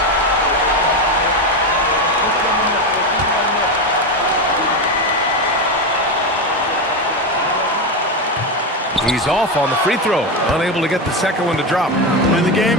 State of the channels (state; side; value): normal; both; correlation 0.14